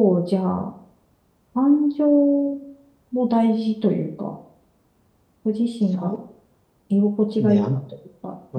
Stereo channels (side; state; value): both; identical; correlation 1.00